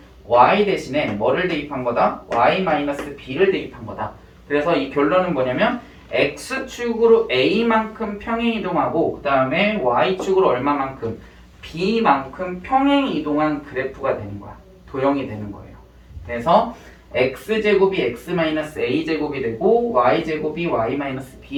y 대신에 뭐를 대입한 거다? y-b를 대입한 거다. 그래서 이 결론은 뭐냐면 x축으로 a만큼 평행 이동하고 그 다음에 y축으로 얼마만큼? b만큼 평행 이동한 그래프가 되는 거야. 도형이 되는 거예요. 그래서 x제곱이 x-a제곱이 되고 y제곱이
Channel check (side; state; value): both; identical; correlation 1.00